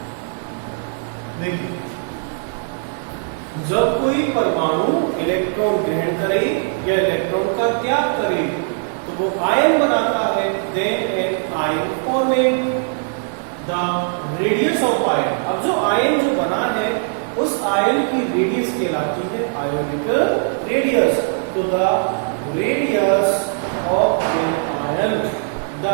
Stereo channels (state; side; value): silent; left; 66 dB below the other